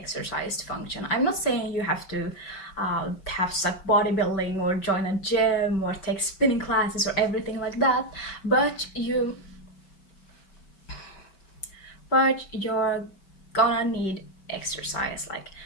to function. I'm not saying you have to have stuck bodybuilding or join a gym or take spinning classes or everything like that, but you're gonna need exercise, like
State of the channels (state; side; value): late; right; 5.2 ms